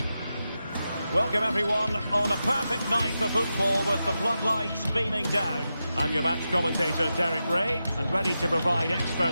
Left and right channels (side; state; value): both; inverted; correlation -0.90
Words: Welcome everyone on a perfect night for football with the floodlights beaming down. I'm your match commentator Derek Ray, and ready to provide